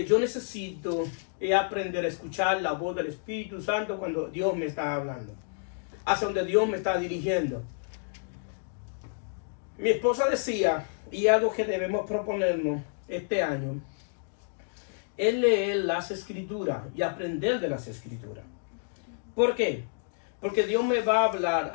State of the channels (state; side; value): silent; right; digital silence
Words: yo necesito es aprender a escuchar la voz del Espíritu Santo cuando Dios me está hablando, hacia donde Dios me está dirigiendo. Mi esposa decía, y algo que debemos proponernos este año, es leer las Escrituras y aprender de las Escrituras. ¿Por qué? Porque Dios me va a hablar